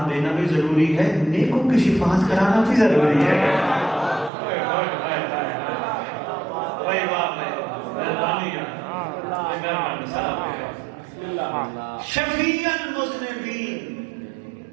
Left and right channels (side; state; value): left; drops out; at 4.3 s